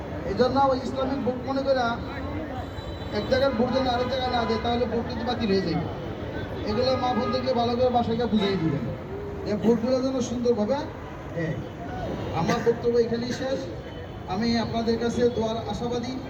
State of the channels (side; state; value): both; identical; correlation 1.00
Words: এই জন্য ওই ইসলামিক ভোট মনে করে এক জায়গার ভোট যেন আরেক জায়গায় না যায়, তাহলে ভোট কিন্তু বাতিল হয়ে যাবে। এগুলো মা বোনদেরকে ভালো করে বাসাকে বুঝিয়ে দিবেন যে ভোটগুলো যেন সুন্দরভাবে দেয়। আমার বক্তব্য এখানেই শেষ। আমি আপনাদের কাছে দোয়ার আশাবাদী